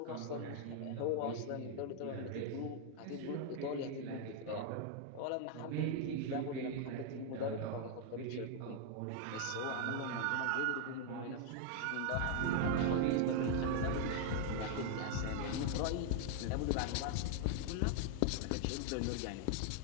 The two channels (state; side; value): different; both; correlation 0.00